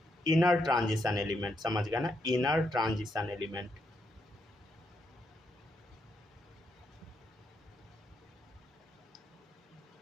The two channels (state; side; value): normal; both; correlation 0.79